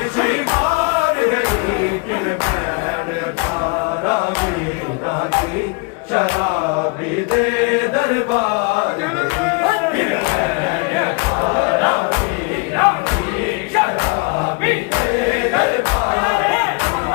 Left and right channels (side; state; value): right; quieter; 30.3 dB